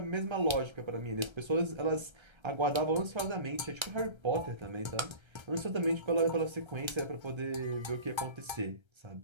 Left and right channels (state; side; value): late; left; 1.3 ms